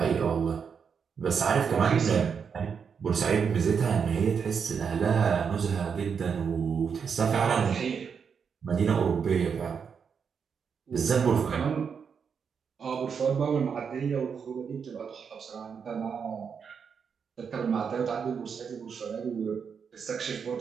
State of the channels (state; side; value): quieter; left; 6.5 dB